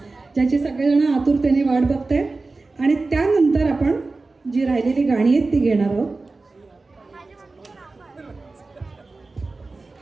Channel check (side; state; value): left; quieter; 3.6 dB